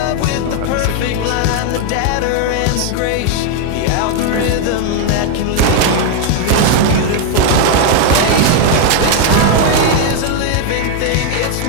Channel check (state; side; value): different; both; correlation 0.00